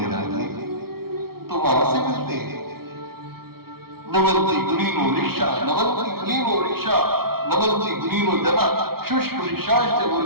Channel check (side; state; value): left; late; 0.94 ms